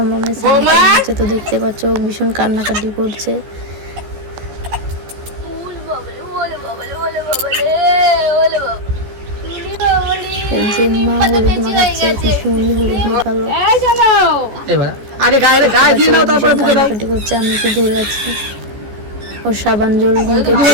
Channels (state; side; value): late; left; 14 ms